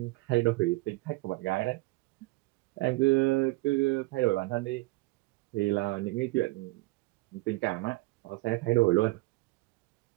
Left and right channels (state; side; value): quieter; left; 22.4 dB